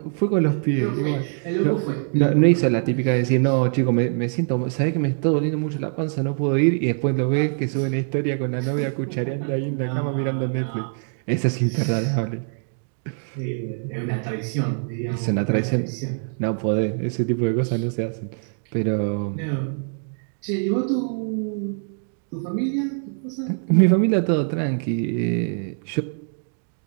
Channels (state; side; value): silent; left; 63 dB below the other